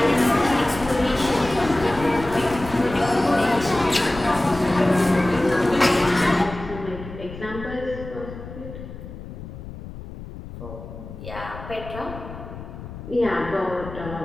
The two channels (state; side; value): noise; left; rumble, 12 dB below the sound